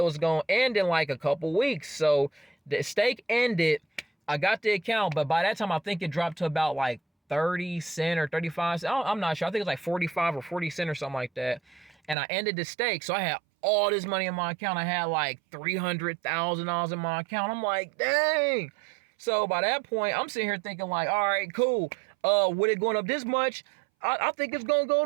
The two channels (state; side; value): drops out; left; at 12.2 s